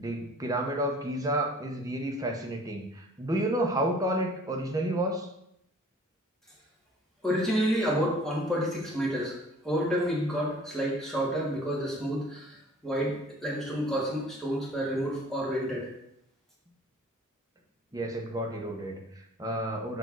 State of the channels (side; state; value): both; normal; correlation 0.51